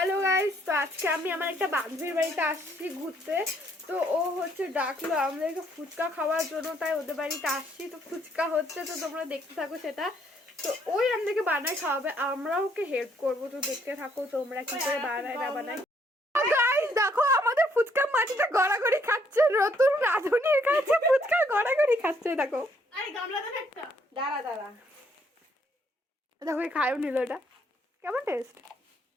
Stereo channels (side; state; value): both; normal; correlation 0.68